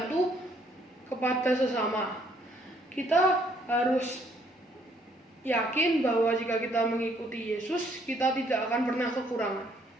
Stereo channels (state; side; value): normal; both; correlation 0.66